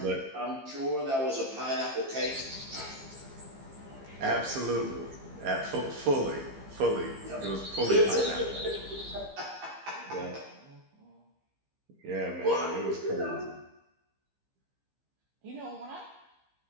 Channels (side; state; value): left; late; 15 ms